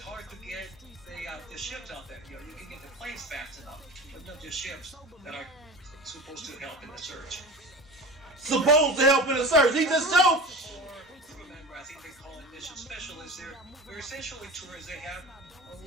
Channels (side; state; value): both; normal; correlation 0.33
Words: to get the ships out there. You can get the planes fast enough, but not the ships that are supposed to help in the search. Supposed to help in the search. He just showed. Remember, I think they call it mission specialists. They're essentially tourists. They have